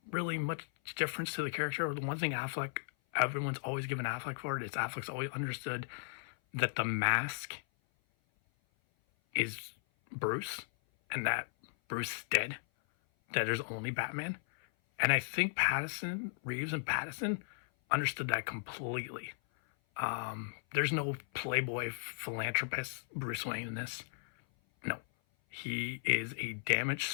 really much difference to the character. The one thing everyone's always given Affleck for it is Affleck's always understood that the mask is Bruce, and that Bruce is dead. That there's only Batman, and I think Reeves and Pattinson understood that completely. There's no playboy philanthropist Bruce Wayne in this. No, he is a damaged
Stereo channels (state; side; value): silent; right; 54 dB below the other